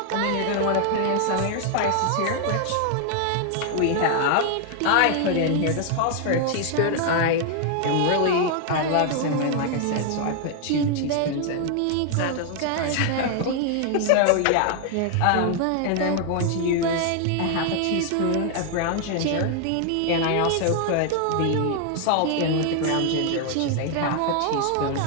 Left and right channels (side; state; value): both; different; correlation 0.00